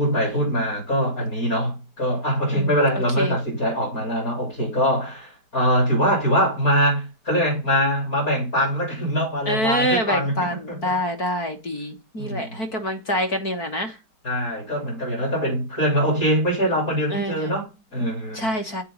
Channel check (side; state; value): right; late; 4.5 ms